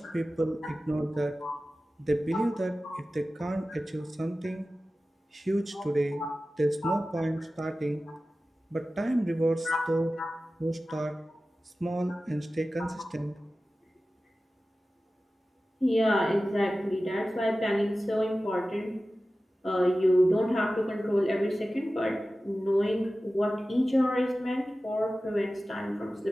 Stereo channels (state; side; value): normal; both; correlation 0.95